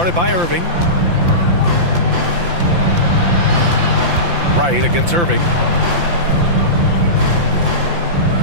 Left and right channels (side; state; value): left; late; 5.8 ms